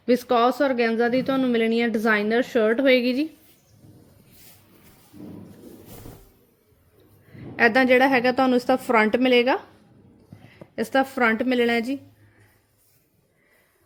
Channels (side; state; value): both; identical; correlation 1.00